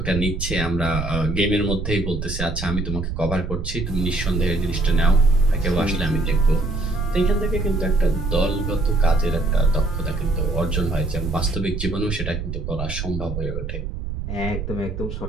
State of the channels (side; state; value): right; noise; rumble, 5 dB below the sound